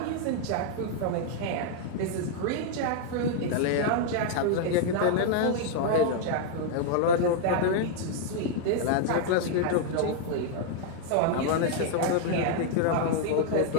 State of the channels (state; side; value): different; both; correlation 0.00